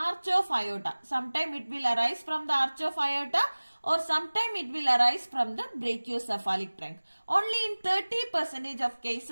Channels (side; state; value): both; inverted; correlation -1.00